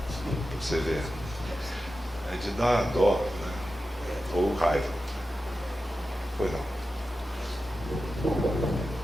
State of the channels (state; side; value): normal; both; correlation 0.92